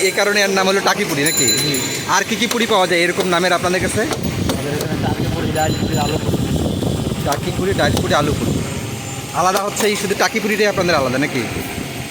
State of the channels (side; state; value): both; identical; correlation 1.00